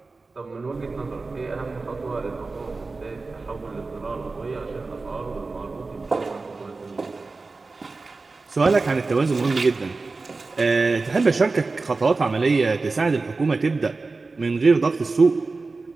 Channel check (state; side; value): quieter; left; 3.8 dB